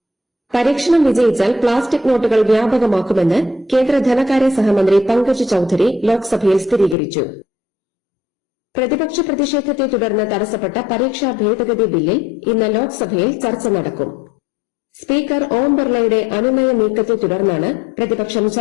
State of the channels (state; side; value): drops out; right; at 7.0 s